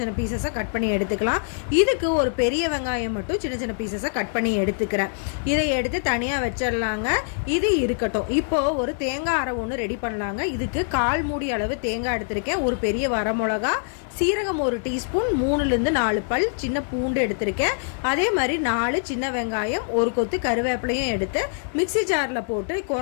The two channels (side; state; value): right; silent; 63 dB below the other